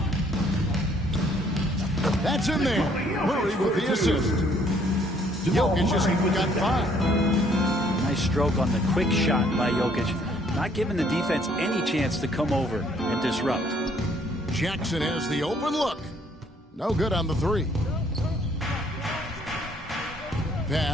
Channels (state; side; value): normal; both; correlation 0.63